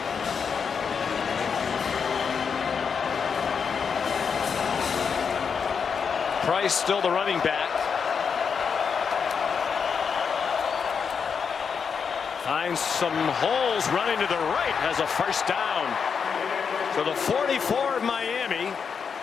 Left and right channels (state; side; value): quieter; right; 6.3 dB